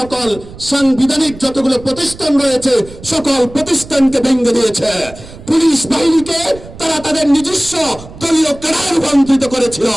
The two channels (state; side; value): noise; right; rumble, 17 dB below the sound